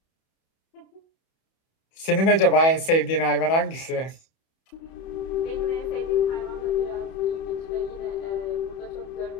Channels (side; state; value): right; late; 31 ms